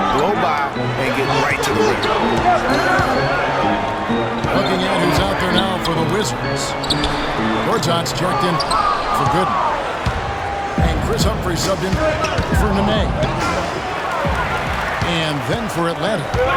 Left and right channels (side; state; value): both; identical; correlation 1.00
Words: by, and get right to the rim. Looking at who's out there now for the Wizards. Gortat's checked in for Gooden. And Chris Humphrey subbed in for Nene. And then for Atlanta,